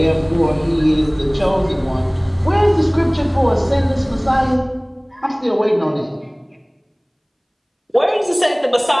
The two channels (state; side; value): identical; both; correlation 1.00